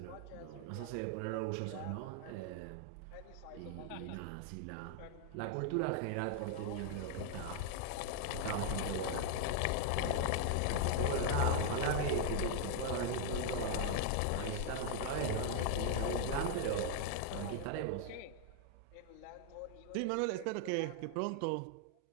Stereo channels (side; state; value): both; different; correlation 0.00